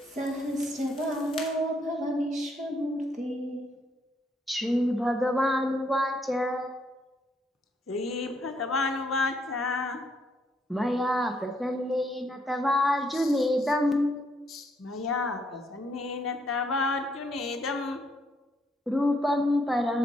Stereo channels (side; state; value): both; normal; correlation 0.72